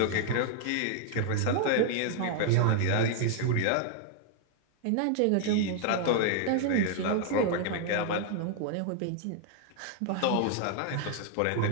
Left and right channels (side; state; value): both; different; correlation 0.00